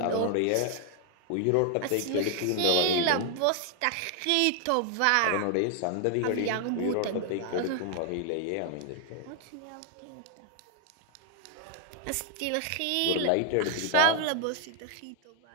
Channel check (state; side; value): different; both; correlation 0.00